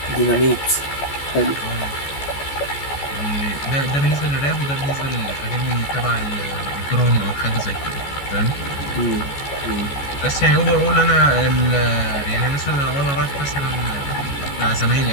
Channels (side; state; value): right; late; 14 ms